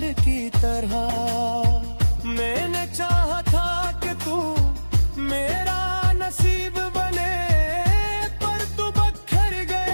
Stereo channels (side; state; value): both; inverted; correlation -1.00